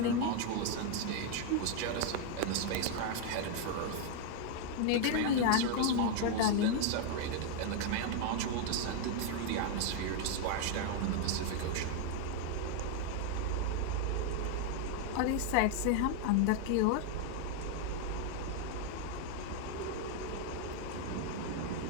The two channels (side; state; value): both; different; correlation 0.00